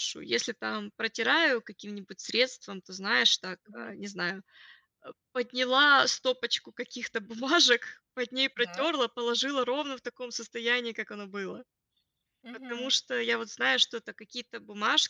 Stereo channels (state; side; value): identical; both; correlation 1.00